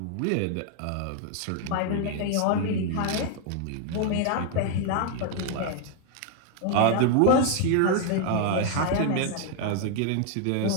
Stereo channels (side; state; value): both; different; correlation 0.00